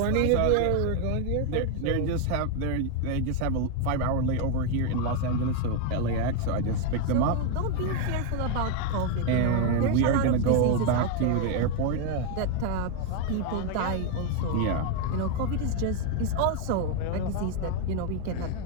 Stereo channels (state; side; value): different; both; correlation 0.01